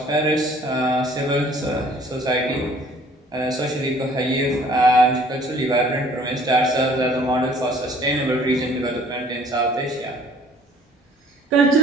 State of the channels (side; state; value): both; normal; correlation 0.55